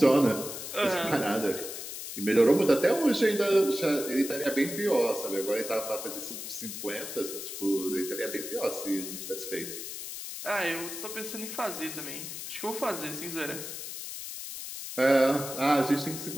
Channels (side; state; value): left; noise; hiss, 8 dB below the sound